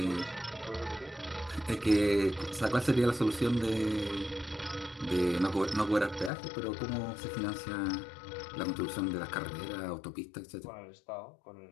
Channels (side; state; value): right; drops out; at 6.3 s